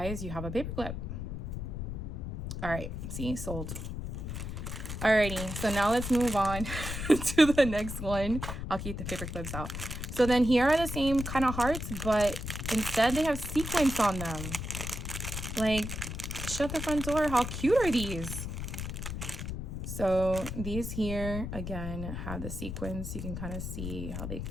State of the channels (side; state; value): left; noise; rumble, 5 dB below the sound